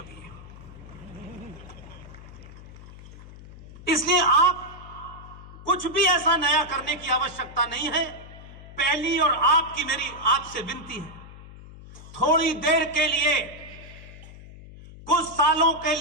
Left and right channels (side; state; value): left; noise; hum, 17 dB below the sound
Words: इसलिए आप कुछ भी ऐसा नया करने की आवश्यकता नहीं है। पहली और आपकी मेरी आपसे विनती है, थोड़ी देर के लिए, कुछ सालों के